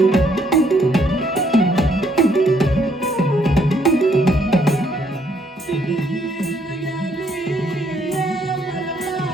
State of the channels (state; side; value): normal; both; correlation 0.69